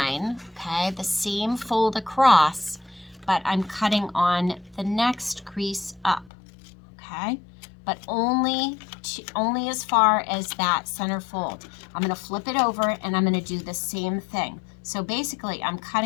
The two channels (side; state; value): right; drops out; at 6.3 s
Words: okay, the same fold across, but I'm cutting on the next crease up, okay, but only as far as that center fold. I'm going to flip it over and I'm going to do the same thing. So basically I'm